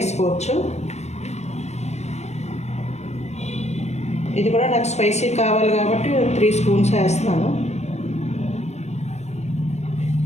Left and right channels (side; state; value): right; late; 0.32 ms